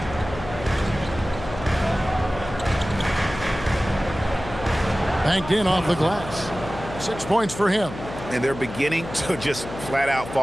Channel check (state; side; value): noise; left; hum, 11 dB below the sound